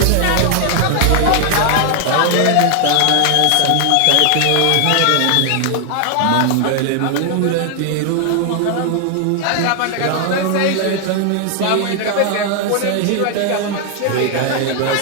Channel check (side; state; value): both; different; correlation 0.00